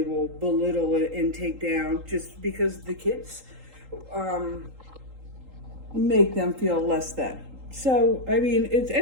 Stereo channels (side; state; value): left; late; 3.8 ms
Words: belittle and take down just because the kids make them feel less than. So I mean, it's